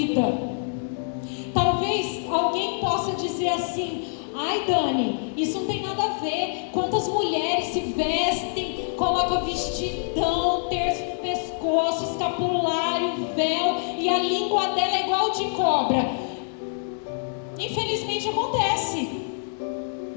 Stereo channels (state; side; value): silent; right; digital silence